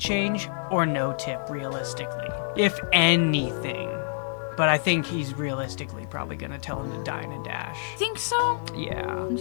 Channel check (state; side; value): silent; right; digital silence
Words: or no tip, realistically. If anything. But I think he's realistically probably gonna tell him to dine and dash. Think so? Yeah. I'm